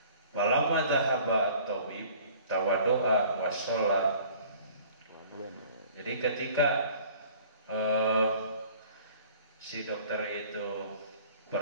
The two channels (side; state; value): both; inverted; correlation -0.50